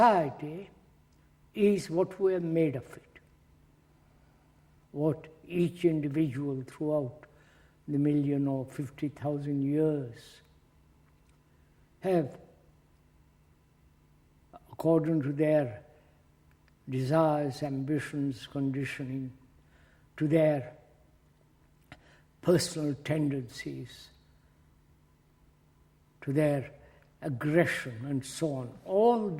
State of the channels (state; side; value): identical; both; correlation 1.00